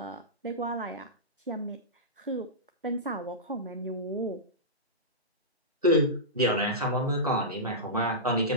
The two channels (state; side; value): normal; both; correlation -0.15